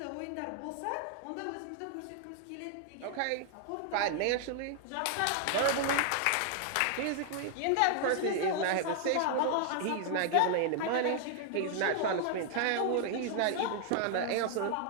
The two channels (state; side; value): different; both; correlation 0.00